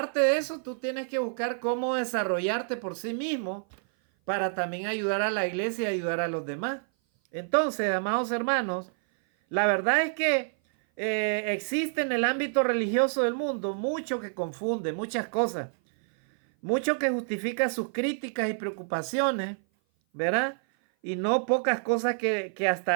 de eso, tú tienes que buscar cómo desarrollarte por sí mismo para también ayudar a la iglesia y ayudar a los demás. Entonces, amados hermanos, la verdad es que existe en el ámbito religioso del mundo mucho que confunde, muchas cosas. Mucho que justifica sus críticas y preocupaciones, ¿verdad? Y no pocas cosas que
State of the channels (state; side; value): silent; left; 56 dB below the other